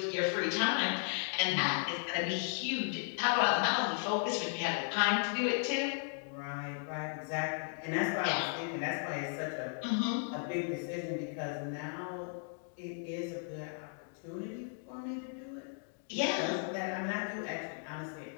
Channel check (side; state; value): right; silent; 54 dB below the other